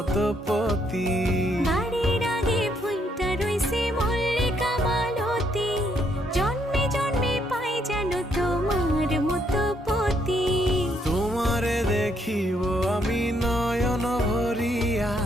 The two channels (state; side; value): normal; both; correlation 0.73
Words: পতি। বাড়ির আগে ফুইটা রইছে মল্লিকা মালতী, জন্মে জন্মে পাই যেন তোমার মতো পতি। তোমারে দেখিব আমি নয়ন ভরিয়া,